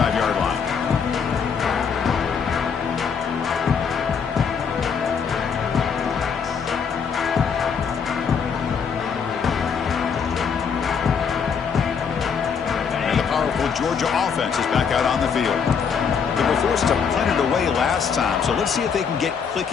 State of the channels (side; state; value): right; quieter; 6.4 dB